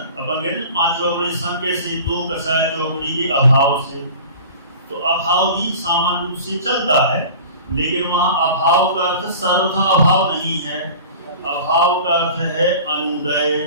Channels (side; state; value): both; inverted; correlation -0.40